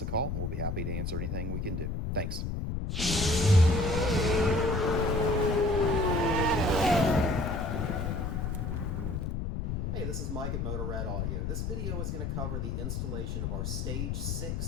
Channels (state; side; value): noise; left; rumble, 2 dB below the sound